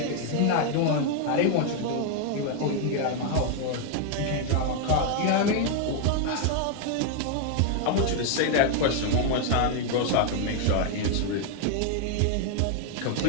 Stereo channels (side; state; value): both; different; correlation 0.00